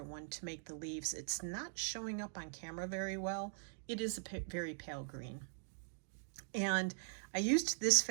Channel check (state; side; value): silent; left; digital silence